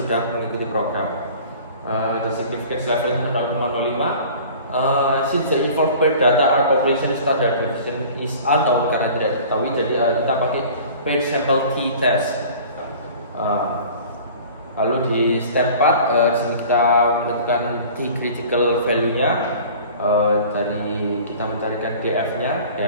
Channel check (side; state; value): both; inverted; correlation -0.44